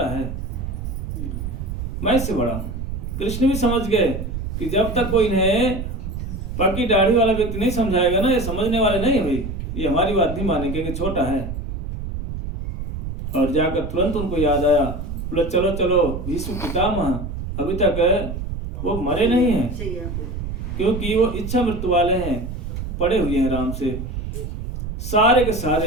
है, मैं इससे बड़ा हूं। कृष्ण भी समझ गए कि जब तक कोई इन्हें पक्की दाढ़ी वाला व्यक्ति नहीं समझाएगा ना, ये समझने वाले नहीं है भाई, ये हमारी बात नहीं मानेंगे, छोटा है। और जाकर तुरंत उनको याद आया, बोले चलो चलो भीष्म पितामह अभी तक वो मरे नहीं हैं, क्योंकि वो इच्छा मृत्यु वाले हैं, पड़े हुए हैं राम से। सारे के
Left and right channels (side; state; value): right; noise; rumble, 6 dB below the sound